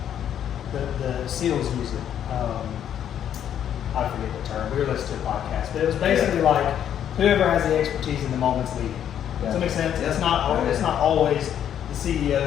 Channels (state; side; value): quieter; right; 9.8 dB